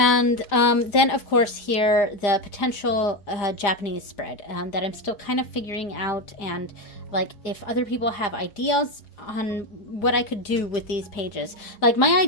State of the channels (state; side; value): late; right; 5.0 ms